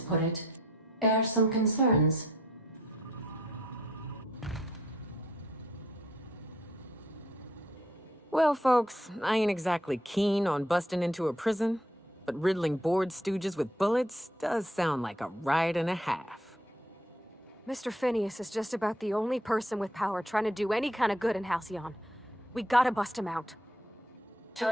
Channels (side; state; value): both; normal; correlation 0.66